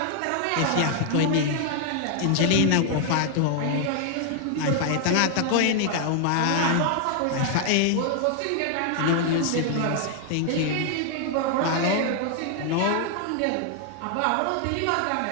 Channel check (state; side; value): different; both; correlation 0.00